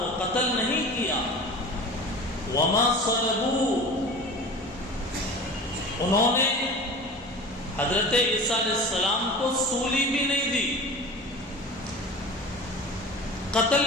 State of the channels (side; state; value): both; normal; correlation 0.36